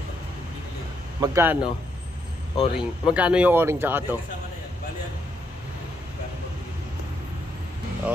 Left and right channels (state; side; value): normal; both; correlation 0.77